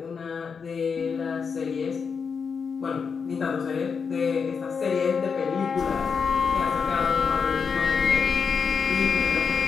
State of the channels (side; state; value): right; quieter; 5.9 dB